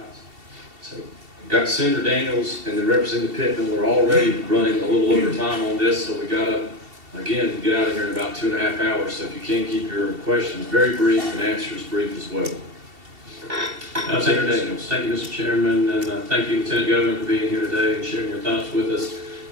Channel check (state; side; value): late; left; 2.7 ms